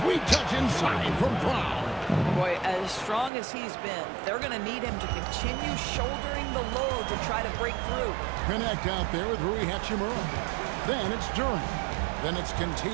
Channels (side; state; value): left; drops out; at 3.3 s